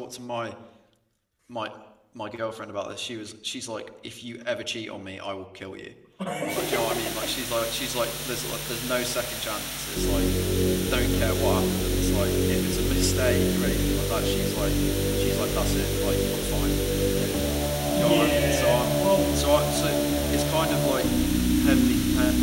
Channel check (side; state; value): both; identical; correlation 1.00